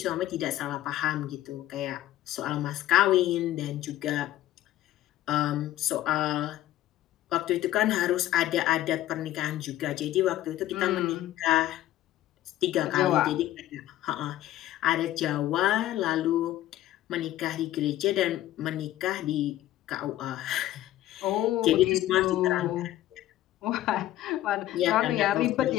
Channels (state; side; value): quieter; right; 14.1 dB